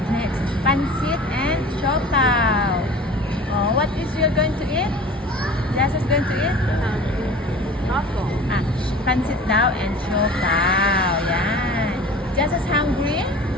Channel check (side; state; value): both; normal; correlation 0.41